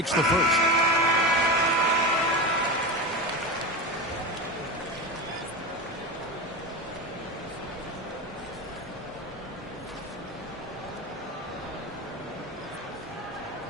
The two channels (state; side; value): normal; both; correlation 0.22